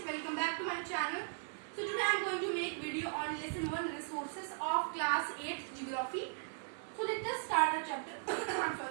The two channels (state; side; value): silent; left; digital silence